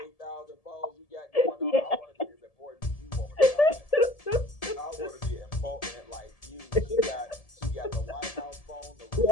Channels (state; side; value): late; right; 1.7 ms